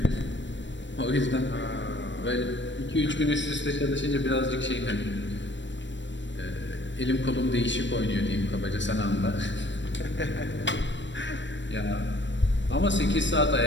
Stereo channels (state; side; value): late; right; 0.53 ms